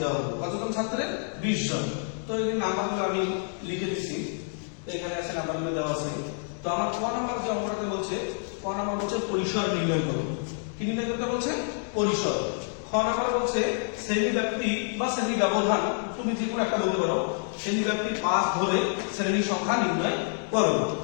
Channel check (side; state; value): right; silent; 59 dB below the other